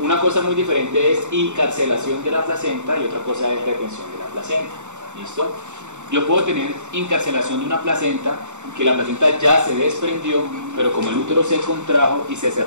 cosa muy diferente es encarcelación de la placenta y otra cosa es retención de la placenta. ¿Listo? Yo puedo tener encarcelación de una placenta, que la placenta ya se desprendió, pero como el útero se contrajo y se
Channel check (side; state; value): left; late; 0.84 ms